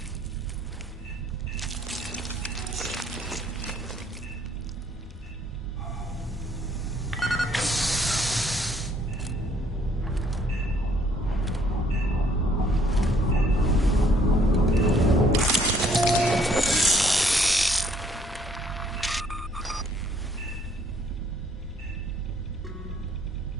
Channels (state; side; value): normal; both; correlation 0.64